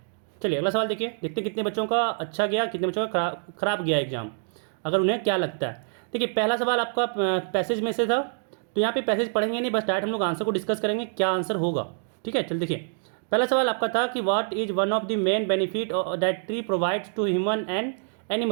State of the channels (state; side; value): silent; left; 60 dB below the other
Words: चलिए अगला सवाल देखिए, देखते हैं कितने बच्चों का अच्छा गया, कितने बच्चों का खराब गया एग्ज़ाम, अगर उन्हें क्या लगता है। देखिए पहला सवाल आपका पैसेज में से था, तो यहाँ पे पैसेज पढ़ेंगे नहीं, बस डायरेक्ट हम लोग आंसर को डिस्कस करेंगे क्या आंसर होगा, ठीक है। चल देखिए, पहला सवाल आपका था कि what is one of the main benefit that tree provides to human and